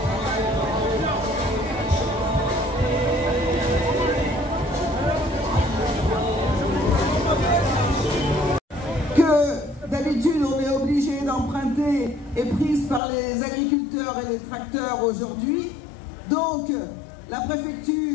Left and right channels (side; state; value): right; drops out; at 13.0 s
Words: D'habitude, on est obligé d'emprunter est prise par les agriculteurs et les tracteurs aujourd'hui. Donc, la